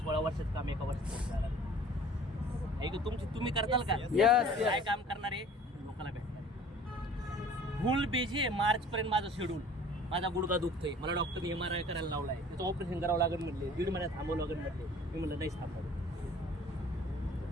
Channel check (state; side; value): normal; both; correlation 0.48